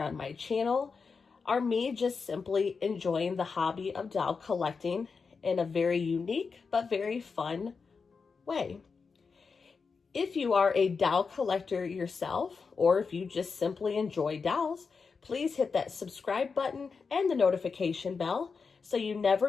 my channel are me just simply enjoying the hobby of doll collecting in a very unique but very fun way. If you are a doll collector yourself, or if you just simply enjoy dolls, please hit that subscribe button and the notification bell so you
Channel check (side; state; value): right; quieter; 5.1 dB